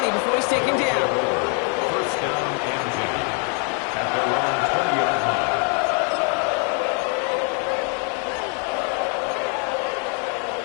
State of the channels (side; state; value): right; quieter; 39.9 dB